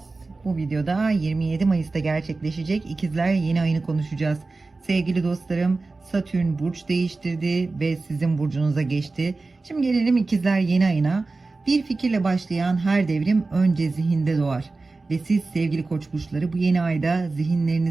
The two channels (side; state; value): left; quieter; 3.6 dB